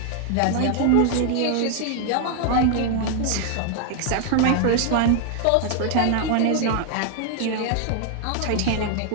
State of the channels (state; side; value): different; both; correlation 0.00